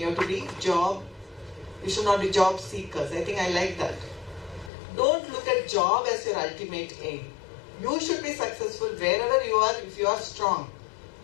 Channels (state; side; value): drops out; right; at 4.7 s